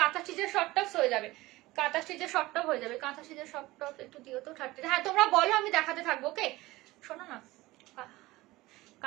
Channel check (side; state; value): left; quieter; 19.2 dB